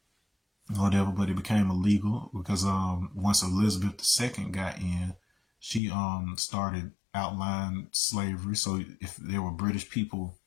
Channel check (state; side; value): drops out; right; at 5.8 s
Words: Whatever, but it became illegal because once Elizabeth II got in, she started outlawing slavery. So if there were British people,